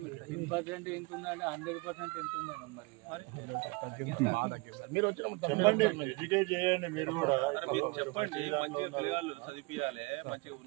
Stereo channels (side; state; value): left; quieter; 27.3 dB